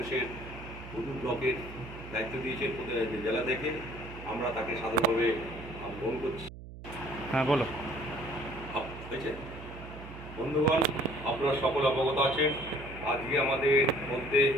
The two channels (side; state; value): right; noise; hum, 14 dB below the sound